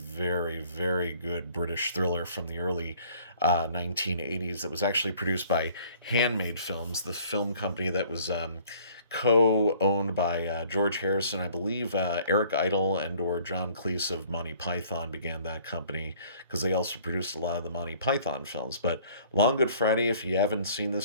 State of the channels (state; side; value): inverted; both; correlation -0.56